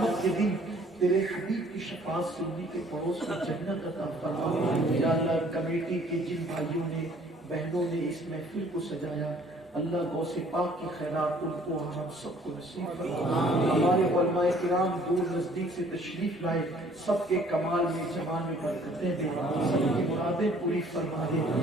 کے دن تیرے حبیب کی شفاعت سے انہی کے پڑوس میں جنت عطا فرما یا اللہ کمیٹی کے جن بھائیوں نے بہنوں نے اس محفل کو سجایا اللہ غوث پاک کی خیرات ان کو ہم سب کو نصیب فرما ہمارے علماء کرام دور نزدیک سے تشریف لائے سب کے کمال میں جمال میں برکتیں دے سب کی مرادیں پوری فرما دے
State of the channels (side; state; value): both; normal; correlation 0.57